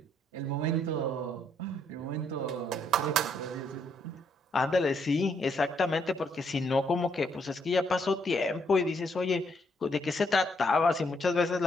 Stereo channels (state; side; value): normal; both; correlation 0.73